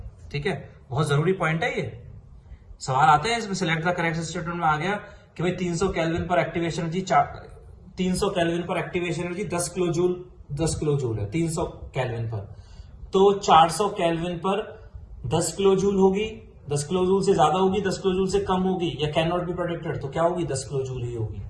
ठीक है। बहुत जरूरी पॉइंट है ये। सवाल आते हैं इसमें, सिलेक्ट द करेक्ट स्टेटमेंट में आ गया कि भाई 300 केल्विन पर एक्टिवेशन एनर्जी 300 केल्विन पर एक्टिवेशन एनर्जी 10 किलो जूल है 300 केल्विन पर, तो 400 केल्विन पर 10 किलो जूल होगी, 10 किलो जूल से ज्यादा होगी, 10 किलो जूल से कम होगी, या कैन नॉट बी प्रेडिक्टेड, तो क्या होगी, 10 किलो जूल ही होगी।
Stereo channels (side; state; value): both; identical; correlation 1.00